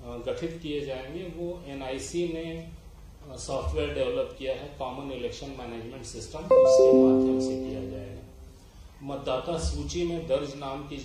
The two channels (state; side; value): identical; both; correlation 1.00